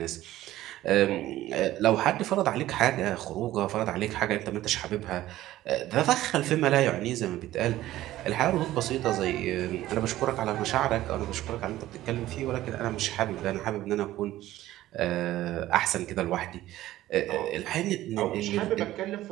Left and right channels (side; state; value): left; quieter; 15.0 dB